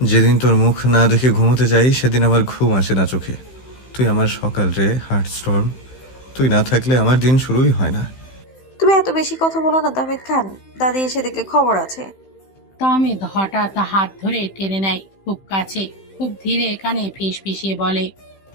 যেদিন তোর মুখ না দেখে ঘুমোতে যাই সেদিন আমার ঘুম আসে না চোখে। তুই আমার সকাল রে, হার্ট স্টর্ম। তুই না থাকলে আমার দিন শুরুই হয় না। তুমি এত বেশি কথা বলো না তাহমিদ খান, দাদি এসে দেখলে খবর আছে। তাহমিদ হঠাৎ হাত ধরে টেনে নেয় খুব কাছে, খুব ধীরে কানে ফিসফিসিয়ে বলে,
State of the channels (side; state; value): right; late; 15 ms